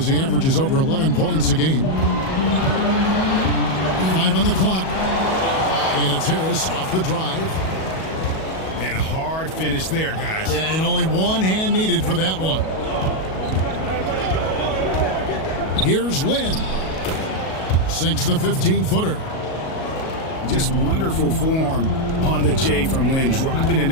he averages over 11 points a game. 5 on the clock. And it's Harris off the drive. And a hard finish there, guys. Yeah, and only one hand needed for that one. Here's Lin. Sinks the 15-footer. Just wonderful form on the J from Lin, dropping it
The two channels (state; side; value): late; right; 37 ms